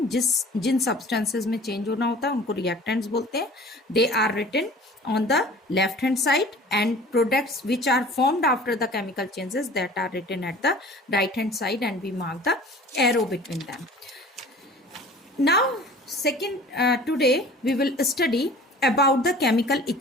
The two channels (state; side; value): normal; both; correlation 0.45